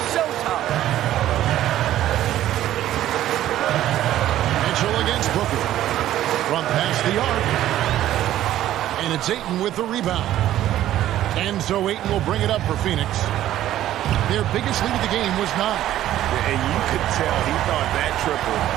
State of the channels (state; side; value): quieter; left; 13.0 dB